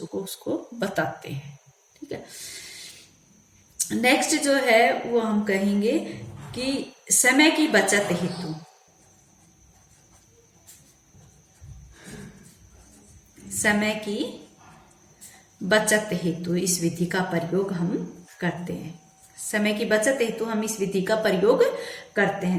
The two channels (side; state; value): both; identical; correlation 1.00